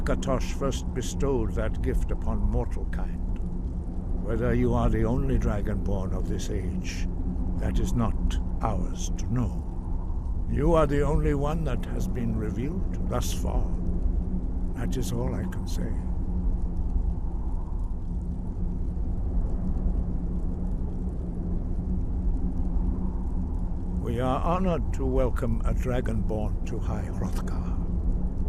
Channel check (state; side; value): identical; both; correlation 1.00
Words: first bestowed that gift upon mortal kind. Whether you are the only Dragonborn of this age, that is not ours to know. You are the only one that has been revealed thus far. That is all I can say. We are honored to welcome a Dragonborn to High Hrothgar.